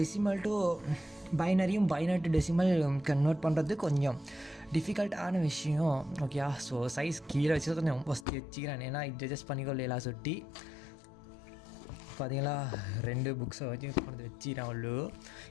டு பைனரியும் பைனரி டு டெசிமல் கன்வெர்ட் பண்ணுறது கொஞ்சம் டிஃபிகல்ட்டான விஷயம். ஓகே, ஸோ சைஸ் கீழே வச்சு கொஞ்சம் ஃபஸ்ட்டு வச்சுக்கிறேன். ஏன்னா இது அட்ஜஸ்ட் பண்ணிக்கொள்ளலாம் சுட்டி பார்த்தீங்களா. 2 புக்ஸை வச்சு கொண்டு வச்சுக்கிறேன். அவ்வளோ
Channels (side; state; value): right; drops out; at 8.2 s